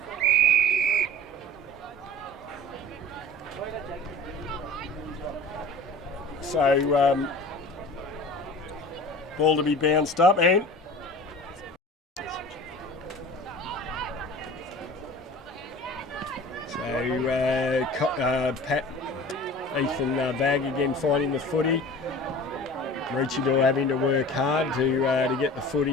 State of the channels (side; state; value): both; normal; correlation 0.41